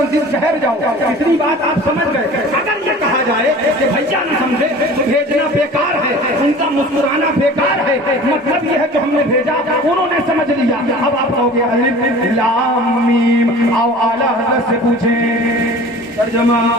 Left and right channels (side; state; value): both; normal; correlation 0.42